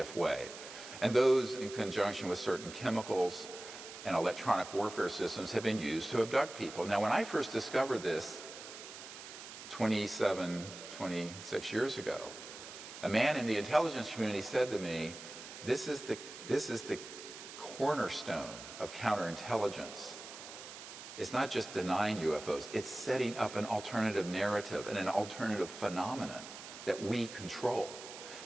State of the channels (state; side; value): noise; right; hiss, 12 dB below the sound